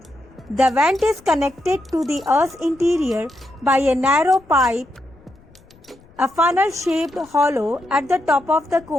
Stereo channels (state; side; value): noise; left; rumble, 27 dB below the sound